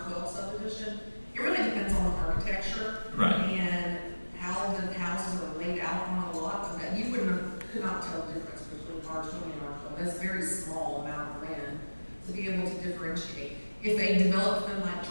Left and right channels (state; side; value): inverted; both; correlation -1.00